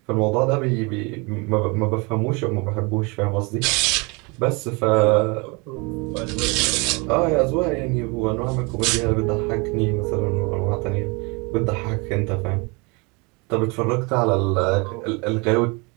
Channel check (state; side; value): quieter; left; 28.8 dB